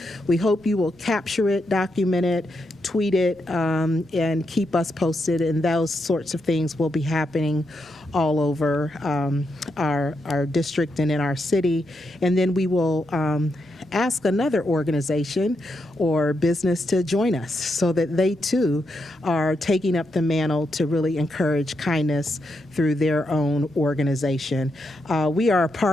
we hope you will capture it, document it, tweet it, and keep us posted, and those sorts of things will be happening all over our district and in our city. And then we will ask another organization or business to join us so that they too are taking up the mantle to really encourage kindness through their own organization. We are a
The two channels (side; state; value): both; normal; correlation 0.82